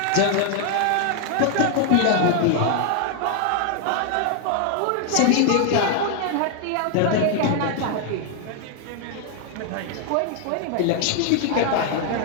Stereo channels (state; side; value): different; both; correlation 0.00